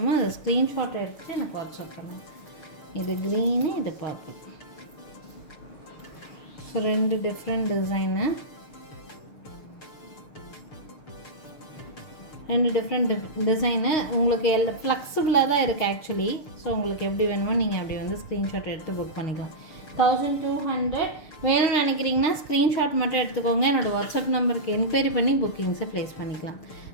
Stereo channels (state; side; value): late; right; 6.7 ms